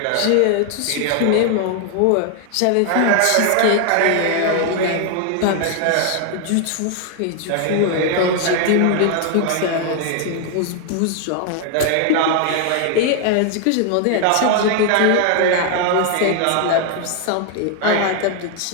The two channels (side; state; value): both; different; correlation 0.00